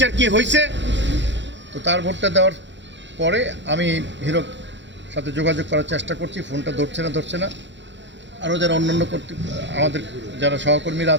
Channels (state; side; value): late; left; 0.53 ms